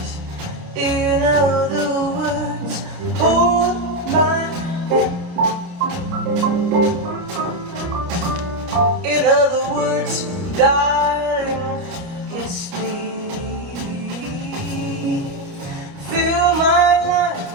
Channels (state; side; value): late; left; 29 ms